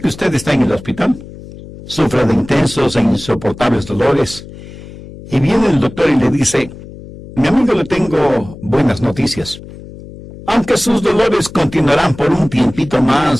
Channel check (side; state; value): left; noise; hum, 16 dB below the sound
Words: usted está en el hospital, sufre de intensos e insoportables dolores, y viene el doctor y le dice: mi amigo, le tengo buenas noticias. Aunque sus dolores continuarán por un tiempito